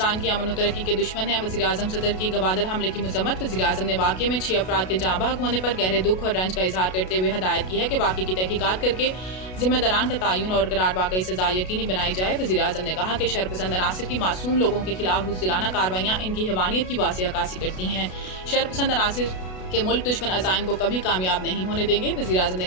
की अमन और तरक्की के दुश्मन हैं। वज़ीर आज़म सदर की गवादर हमले की मजम्मत। वज़ीर आज़म ने वाक़े में 6 अफराद के जाँ बहक होने पर गहरे दुख और रंज का इजहार करते हुए हदायत की है कि वाक़े की तहकीकात करके जिम्मेदारान का तयन और करार वाकई सजा यकीनी बनाई जाए। वज़ीर आज़म ने कहा कि शरपसंद अनासिर की मासूम लोगों के खिलाफ बुज़दिलाना कार्रवाइयाँ इनकी हैवानियत की वाज़ेह अक्कासी करती हैं। शरपसंद अनासिर के मुल्क दुश्मन अज़ाइम को कभी कामयाब नहीं होने देंगे। वज़ीर आज़म ने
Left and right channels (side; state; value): right; late; 32 ms